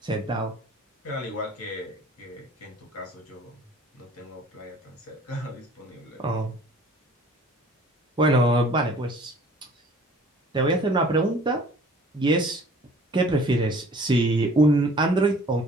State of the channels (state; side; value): normal; both; correlation 0.51